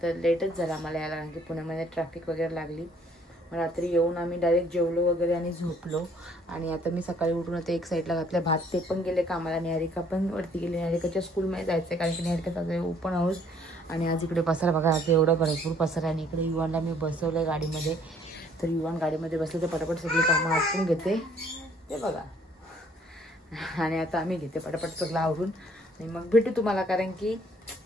तर लेटच झाला आम्हाला यायला कारण की पुण्यामध्ये ट्रॅफिक वगैरे लागली. रात्री येऊन आम्ही डायरेक्ट जेवलो वगैरे आणि झोपलो. आणि आता मी सकाळी उठून आता एक साईडला घातलं भात. ते पण गेले कामाला. निहारिका पण वरती गेली. निहारिकाच्या स्कूलमध्ये जायचं आहे कारण की निहारिकाचा ओपन हाऊस. आणि आज इकडे पसारा बघा आता एवढा भरपूर पसारा. आणि इकडे युवानला मी बसवलं गाडीमध्ये. तर युवान गाडीमध्ये बसले तर पटापट सगळी कामं आटपून घेते ते बघा. आणि आता आम्ही घेते पटापट सगळं आवरून आणि मग भेटू तुम्हाला कारण की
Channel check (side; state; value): both; normal; correlation 0.61